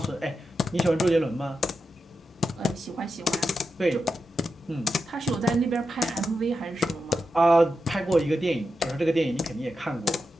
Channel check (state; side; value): normal; both; correlation 0.88